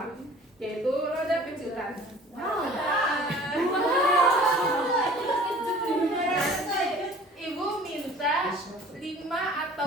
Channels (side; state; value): both; normal; correlation 0.48